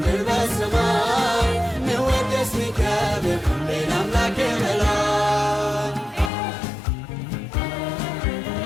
በሰማይ ሚወደስ ሚከብር ሌላ አምላክ በላይ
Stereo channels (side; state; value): right; drops out; at 6.3 s